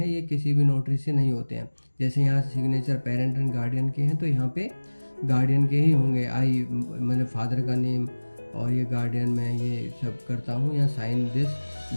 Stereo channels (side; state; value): both; inverted; correlation -1.00